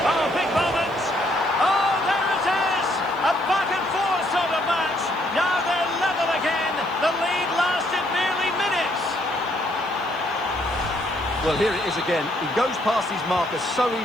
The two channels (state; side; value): noise; left; hiss, 29 dB below the sound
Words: Oh, big moment. Oh, there it is. A back and forth sort of match. Now they're level again. The lead lasted nearly minutes. Well, here it is again. He goes past his marker so